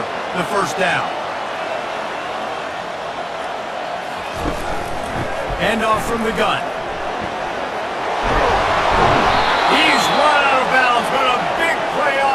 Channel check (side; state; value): both; identical; correlation 1.00